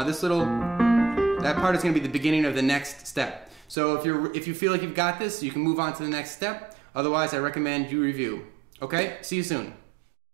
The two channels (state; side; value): drops out; left; at 3.8 s